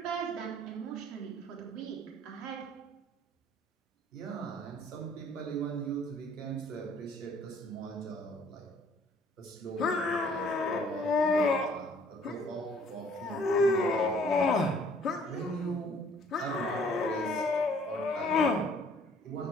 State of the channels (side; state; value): both; normal; correlation 0.58